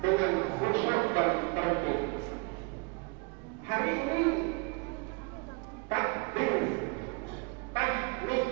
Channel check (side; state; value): left; quieter; 30.5 dB